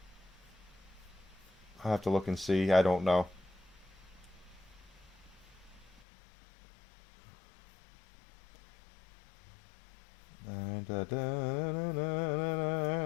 have to look and see. I don't know.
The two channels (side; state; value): right; drops out; at 6.0 s